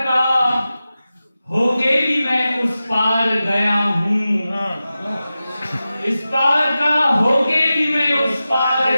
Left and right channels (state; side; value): inverted; both; correlation -0.94